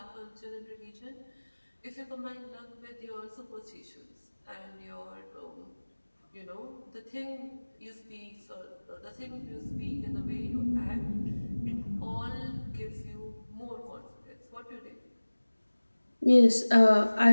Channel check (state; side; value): inverted; both; correlation -1.00